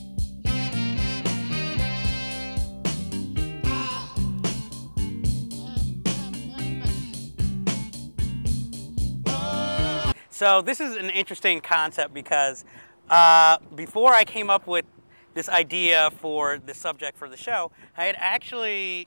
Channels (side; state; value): both; inverted; correlation -1.00